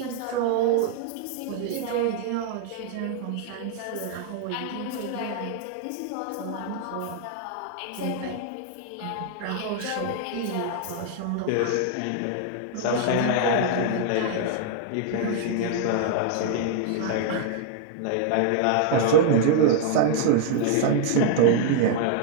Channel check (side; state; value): both; different; correlation -0.01